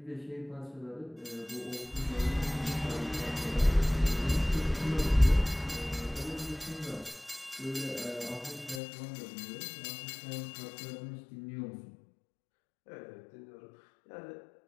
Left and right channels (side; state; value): right; drops out; at 8.8 s